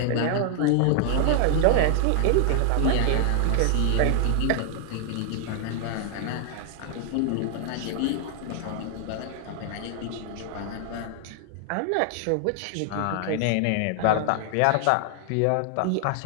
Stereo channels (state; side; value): different; both; correlation 0.00